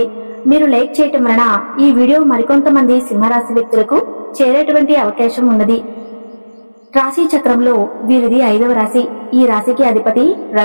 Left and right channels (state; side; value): inverted; both; correlation -1.00